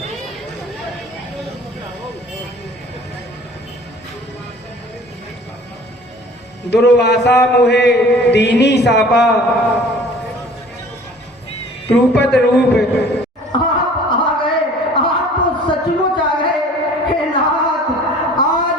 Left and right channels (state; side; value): normal; both; correlation 0.49